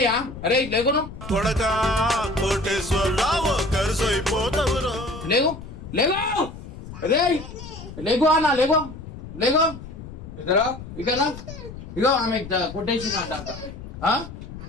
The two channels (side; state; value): left; noise; rumble, 12 dB below the sound